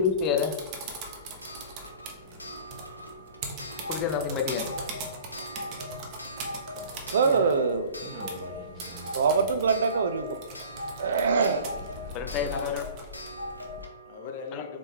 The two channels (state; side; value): inverted; both; correlation -0.44